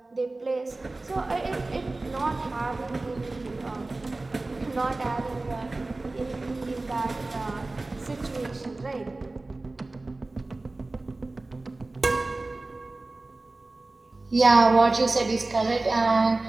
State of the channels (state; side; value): quieter; left; 3.1 dB